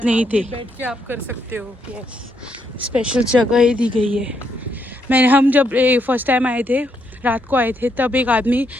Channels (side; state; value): both; normal; correlation 0.77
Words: ही थे। बैठ के आप कर सकते हो। यस, स्पेशल जगह ही दी गई है। हम जब फर्स्ट टाइम आए थे रात को आए थे तब एक आदमी